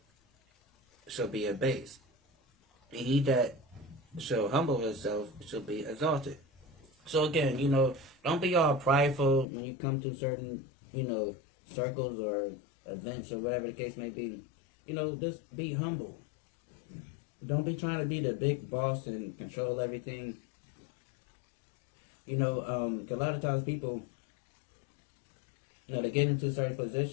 shall be abased, and he that shall humble himself shall be exalted. So again, don't be all prideful when you come to certain, circles or events or whatever the case may be. Just be humble. Don't be trying to be the big boss and control everything. 'Cause a lot of times people, they get into certain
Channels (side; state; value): right; drops out; at 9.5 s